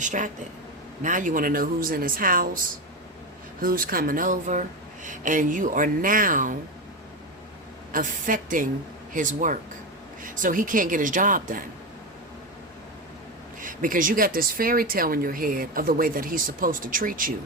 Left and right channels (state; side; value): normal; both; correlation 0.16